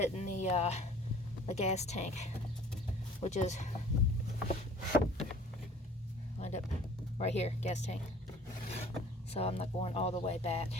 the gas tank, which is lined up right here, gas tank. So I'm not going all the way back.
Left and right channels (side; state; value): both; normal; correlation 0.50